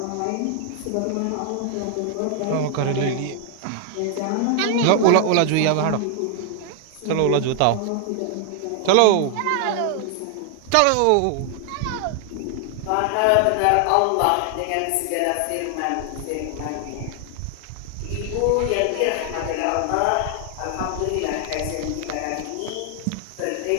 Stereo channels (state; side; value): different; both; correlation 0.00